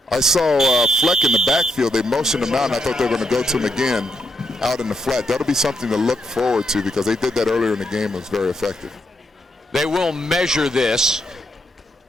I saw Fleck in the backfield. They motioned him out, and I thought they were going to go to him again out in the flat. That'll be something to look forward to because they did that earlier in the game. It was very effective. They will measure this.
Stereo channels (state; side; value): normal; both; correlation 0.78